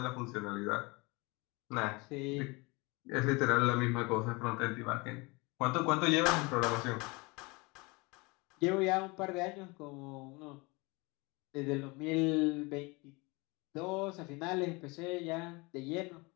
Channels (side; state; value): right; quieter; 26.3 dB